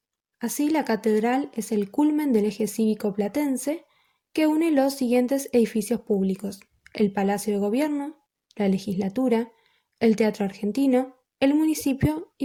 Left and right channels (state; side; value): identical; both; correlation 1.00